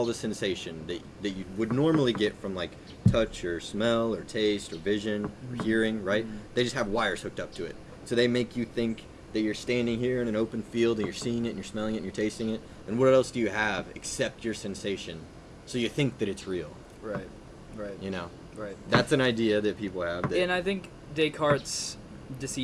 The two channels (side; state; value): both; identical; correlation 1.00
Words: the sensation that you would normally get from like touch or smell or taste or vision or hearing, right? They just have wires hooked up to it. So they make you think that you're standing here in an open field and you're seeing it and you're smelling it and you're tasting it. And what else do you have except your sensation? So you think that it's real. Right. Right. That's an idea that people have. And I think Descartes'